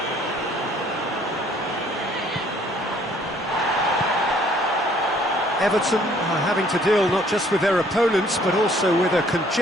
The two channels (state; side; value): normal; both; correlation 0.60